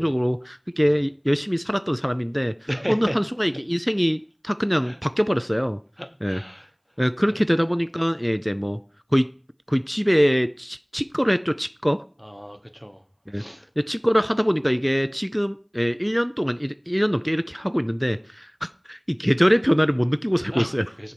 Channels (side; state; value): both; identical; correlation 1.00